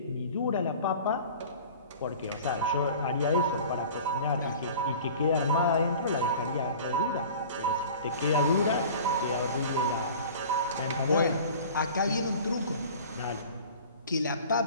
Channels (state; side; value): inverted; both; correlation -0.42